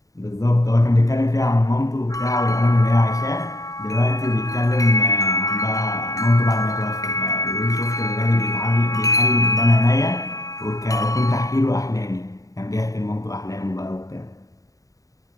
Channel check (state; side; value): late; right; 0.16 ms